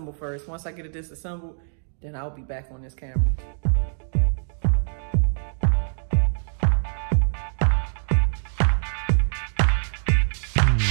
first. Once I get it disassembled, then I'll be back on this camera.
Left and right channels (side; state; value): left; silent; digital silence